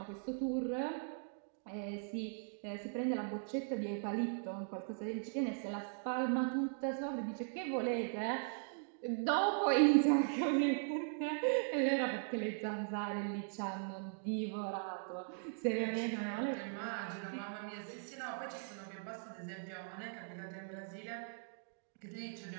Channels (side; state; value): left; silent; digital silence